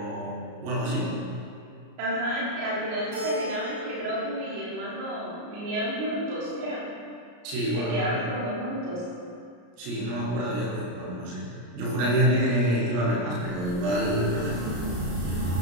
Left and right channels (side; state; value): left; late; 33 ms